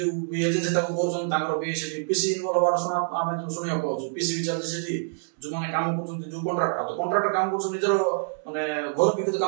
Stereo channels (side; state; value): left; silent; 61 dB below the other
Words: एजेंसी ताको करछन तांगर भी सेठी पीसी इनवॉल्व होवार सुना आमे जो सुनिया पाउछु पीसी विचार सेठी जो माने काम करछन जो कॉन्ट्रैक्टर तो कॉन्ट्रैक्टर काम करछन निजर माने घर भी तो